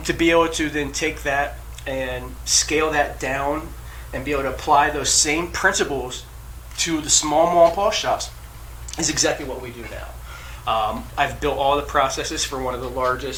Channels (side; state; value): both; identical; correlation 1.00